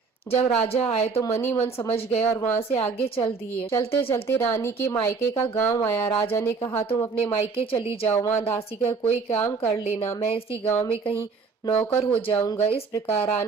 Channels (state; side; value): quieter; left; 4.9 dB